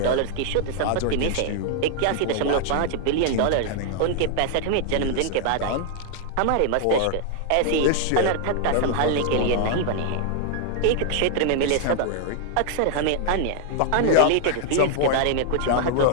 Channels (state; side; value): different; both; correlation 0.00